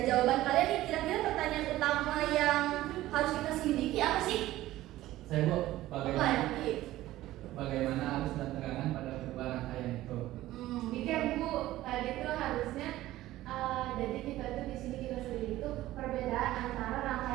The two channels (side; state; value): left; quieter; 15.7 dB